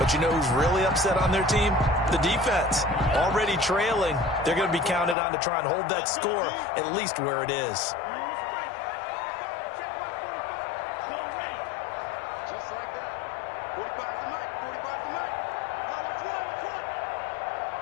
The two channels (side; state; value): right; drops out; at 5.2 s